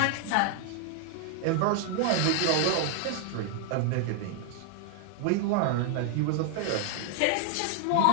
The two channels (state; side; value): different; both; correlation 0.00